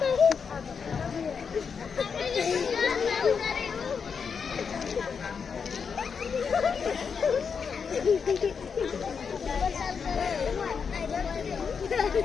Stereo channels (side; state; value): right; quieter; 6.1 dB